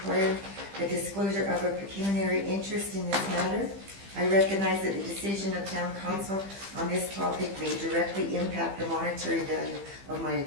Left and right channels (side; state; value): left; late; 15 ms